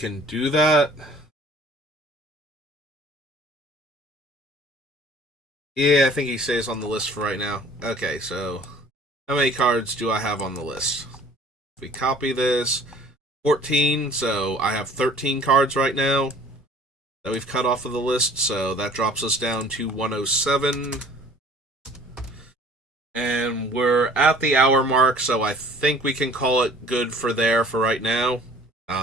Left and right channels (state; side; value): normal; both; correlation 0.51